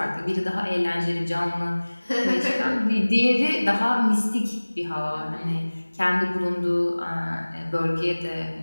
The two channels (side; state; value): both; inverted; correlation -1.00